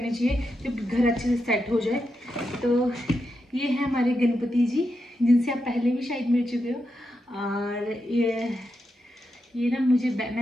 चाहिए जब घर अच्छे से सेट हो जाए। तो ये है हमारे गणपति जी, जिनसे आप पहले भी शायद मिल चुके हो। और ये ना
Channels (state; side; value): normal; both; correlation 0.86